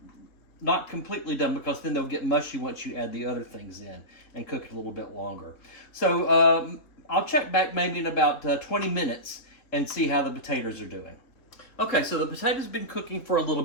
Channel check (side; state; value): right; late; 3.7 ms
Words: Not completely done, because then they'll get mushy once you add the other things in and cook it a little bit longer. So I'll check back maybe in about 20 minutes and see how the potatoes are doing. Okay, so the potatoes have been cooking for a little